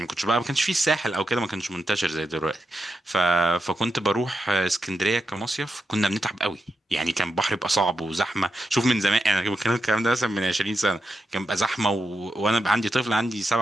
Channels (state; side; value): normal; both; correlation 0.86